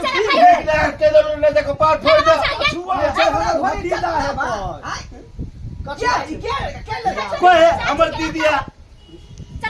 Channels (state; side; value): identical; both; correlation 1.00